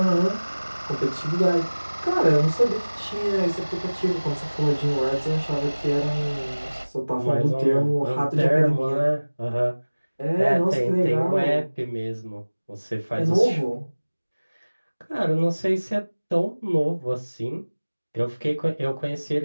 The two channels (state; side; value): inverted; both; correlation -1.00